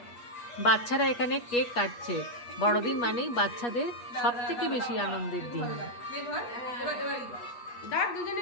বাচ্চারা এখানে কেক কাটছে। বড়দিন মানেই বাচ্চাদের সব থেকে বেশি আনন্দের দিন।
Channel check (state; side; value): late; right; 8.4 ms